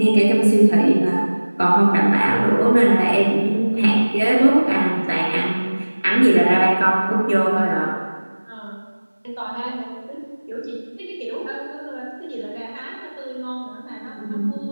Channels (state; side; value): inverted; both; correlation -1.00